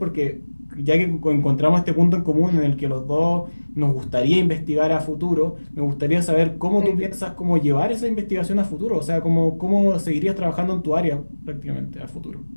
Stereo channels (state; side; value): inverted; both; correlation -1.00